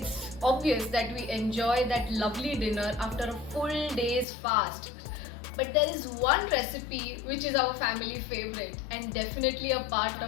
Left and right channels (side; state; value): right; drops out; at 4.2 s